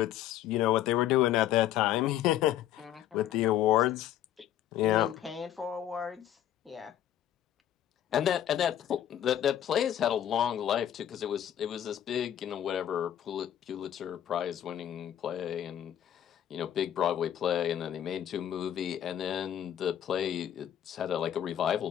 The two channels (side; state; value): right; quieter; 11.1 dB